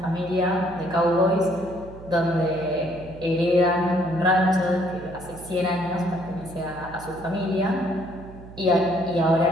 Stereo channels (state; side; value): noise; right; hum, 17 dB below the sound